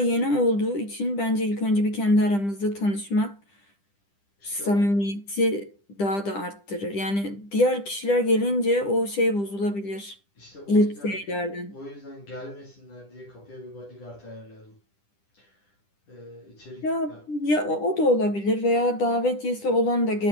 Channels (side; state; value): right; late; 10 ms